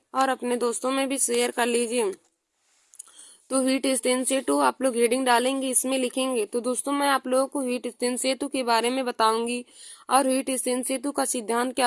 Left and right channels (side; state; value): both; identical; correlation 1.00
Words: और अपने दोस्तों में भी शेयर कर लीजिए। तो व्हीटस्टीन सेतु आप लोग हेडिंग डालेंगे, इसमें लिखेंगे। तो दोस्तों मैं आप लोगों को व्हीटस्टीन सेतु के बारे में बताऊंगी और व्हीटस्टीन सेतु का सिद्धांत